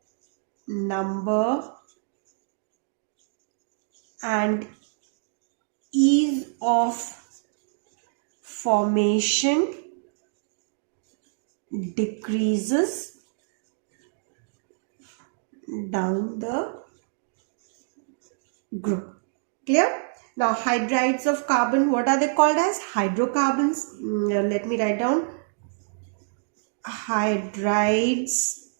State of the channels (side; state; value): left; silent; digital silence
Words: number and ease of formation decreases down the group. Clear? Now hydrides of carbon, what are they called as? Hydrocarbons. Let me write down. Hydrides